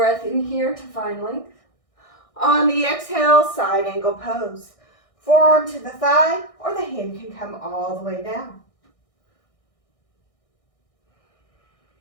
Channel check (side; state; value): right; late; 1.6 ms